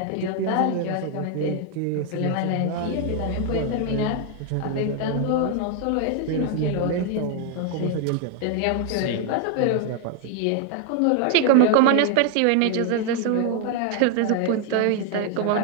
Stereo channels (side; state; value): both; different; correlation 0.00